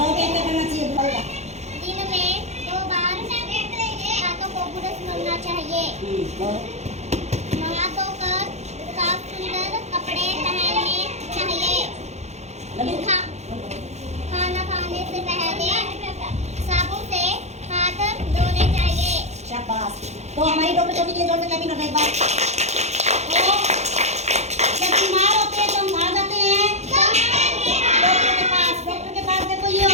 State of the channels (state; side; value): late; left; 0.32 ms